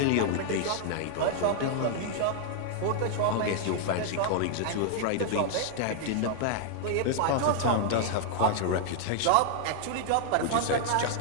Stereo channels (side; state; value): both; different; correlation -0.01